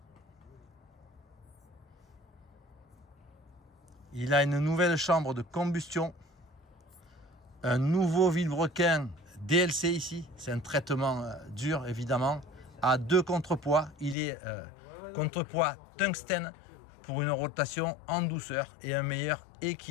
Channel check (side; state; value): right; drops out; at 14.2 s